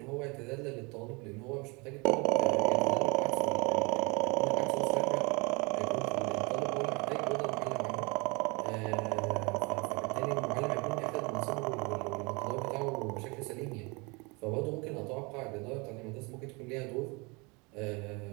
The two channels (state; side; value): quieter; left; 28.4 dB